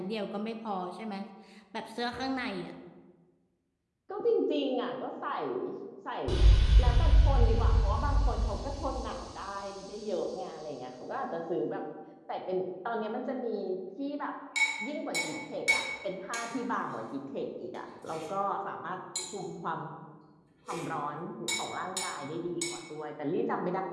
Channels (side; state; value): both; identical; correlation 1.00